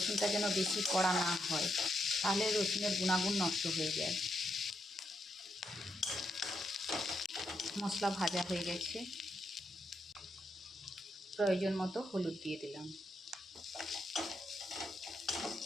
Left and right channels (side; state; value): both; normal; correlation 0.81